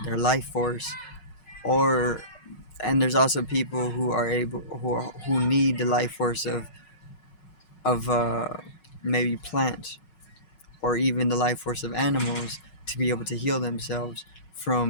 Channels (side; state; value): right; late; 5.4 ms